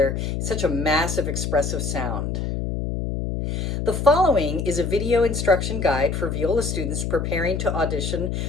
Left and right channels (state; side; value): noise; left; hum, 2 dB below the sound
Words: in such a massive expressive sound. The following is a video instruction guide for viola students preparing to audition